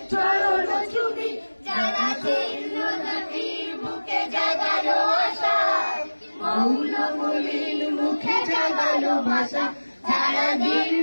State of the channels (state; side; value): inverted; both; correlation -1.00